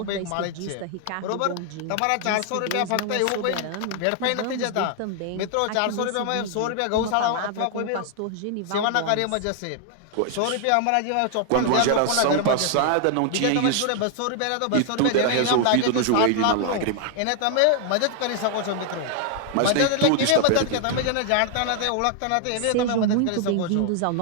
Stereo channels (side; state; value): both; different; correlation 0.00